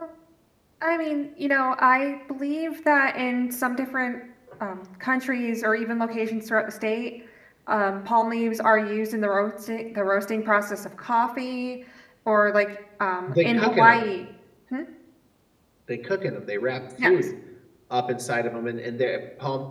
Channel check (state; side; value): identical; both; correlation 1.00